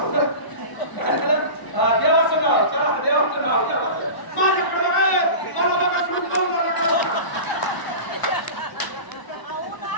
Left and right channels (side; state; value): right; late; 1.0 ms